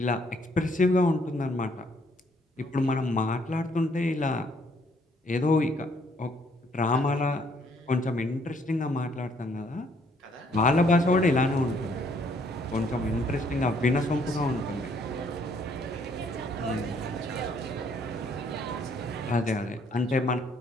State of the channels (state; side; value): normal; both; correlation 0.66